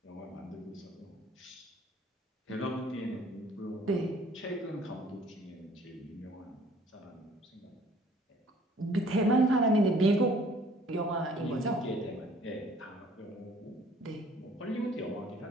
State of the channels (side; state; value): both; normal; correlation 0.56